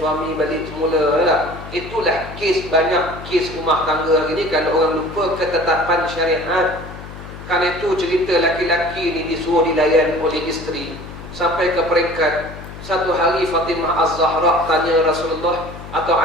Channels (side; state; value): left; noise; hum, 13 dB below the sound